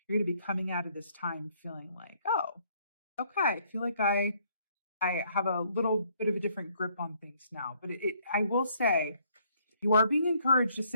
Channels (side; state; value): both; inverted; correlation -0.66